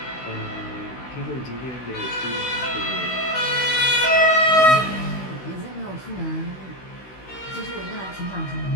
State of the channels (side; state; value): right; late; 16 ms